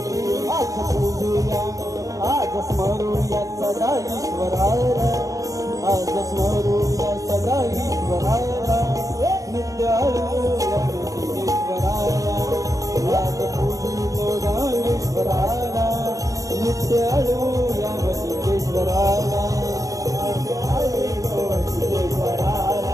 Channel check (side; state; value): left; late; 0.16 ms